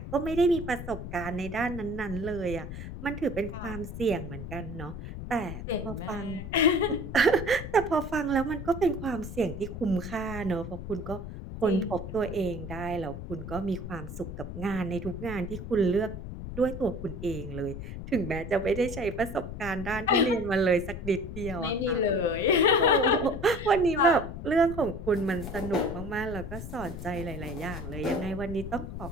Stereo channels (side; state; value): left; noise; rumble, 8 dB below the sound